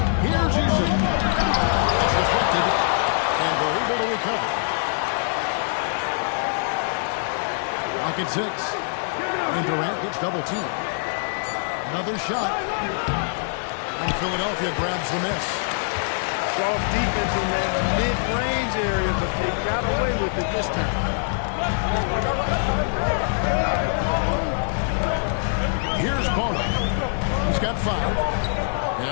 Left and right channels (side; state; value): right; silent; digital silence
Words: Here's Eason. It's deflected. And they're able to recover. Rocket 6. And Durant gets double teamed. Another shot. And Philadelphia grabs the miss. Soft defense in that mid-range area, but they got away with it this time. Here's Bono. He's got 5.